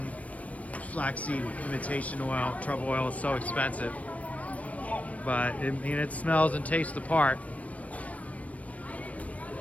flaxseed imitation oil. Truffle oil is so expensive, but it smells and tastes the part.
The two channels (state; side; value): late; right; 0.067 ms